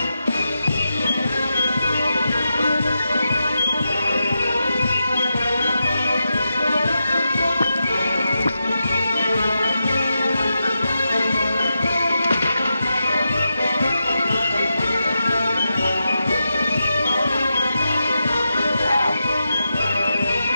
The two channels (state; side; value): inverted; both; correlation -0.88